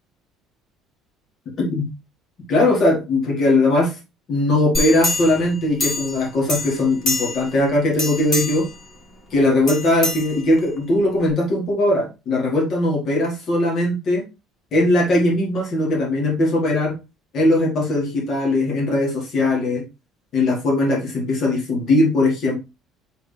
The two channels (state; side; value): normal; both; correlation 0.61